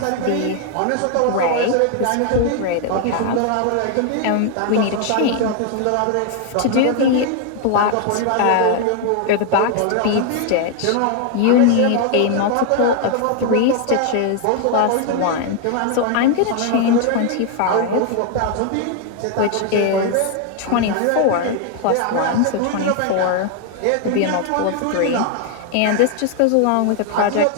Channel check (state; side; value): different; both; correlation 0.00